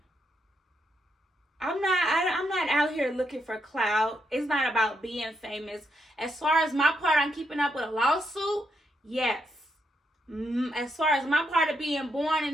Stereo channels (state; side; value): normal; both; correlation 0.80